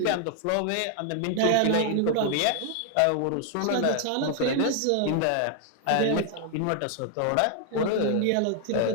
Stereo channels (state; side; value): different; both; correlation 0.00